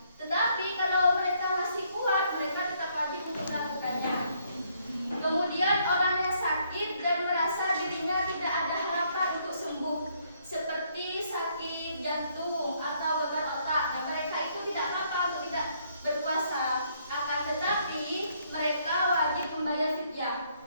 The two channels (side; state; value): both; inverted; correlation -0.70